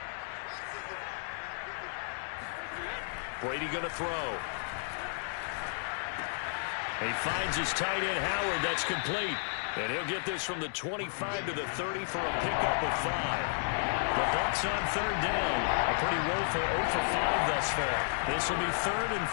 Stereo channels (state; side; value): silent; right; digital silence